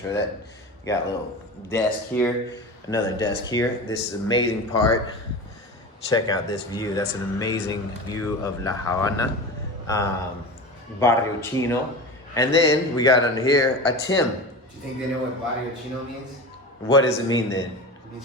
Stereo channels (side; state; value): both; normal; correlation 0.29